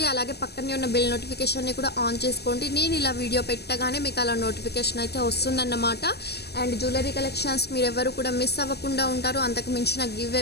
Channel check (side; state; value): right; late; 0.47 ms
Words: అలాగే పక్కనే ఉన్న బెల్ నోటిఫికేషన్ని కూడా ఆన్ చేసుకోండి. నేను ఇలా వీడియో పెట్టగానే మీకు అలా నోటిఫికేషన్ అయితే వస్తుందన్నమాట. అండ్ జ్యువెలరీ కలెక్షన్స్ మీరెవరు కూడా మిస్ అవ్వకుండా ఉంటారు. అంతకు మించిన గివ్